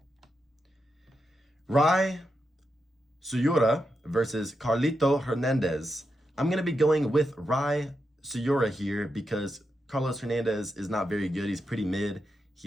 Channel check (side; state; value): both; normal; correlation 0.86